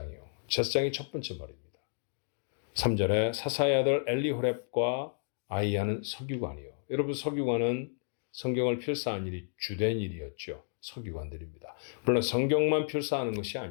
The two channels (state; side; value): silent; right; digital silence